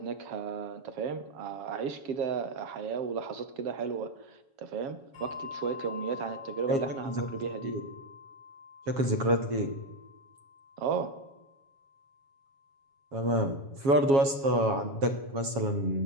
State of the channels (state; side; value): late; left; 7.3 ms